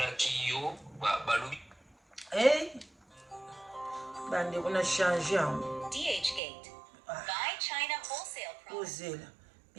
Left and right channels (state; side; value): drops out; left; at 6.4 s